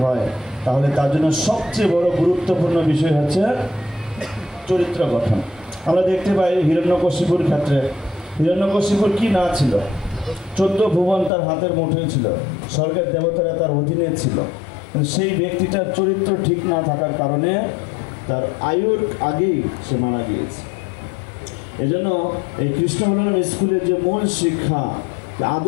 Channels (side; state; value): right; drops out; at 11.3 s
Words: তাহলে তার জন্য সবচেয়ে বড় গুরুত্বপূর্ণ বিষয় হচ্ছে চরিত্র গঠন। আমরা দেখতে পাই হিরণ্যকশিপুর ক্ষেত্রে, হিরণ্যকশিপুর কি না ছিল? 14 ভুবন তার হাতের মুঠোয় ছিল, স্বর্গের দেবতারা তার অধীনে ছিল। সেই ব্যক্তিটার চরিত্র ঠিক না থাকার কারণে তার আয়ুর আগেই সে মারা গিয়েছে। এজন্য এই কৃষ্ণ বলরাম স্কুলের যে মূল শিক্ষা,